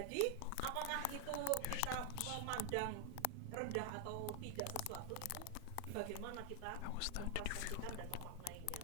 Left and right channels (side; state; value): both; different; correlation 0.00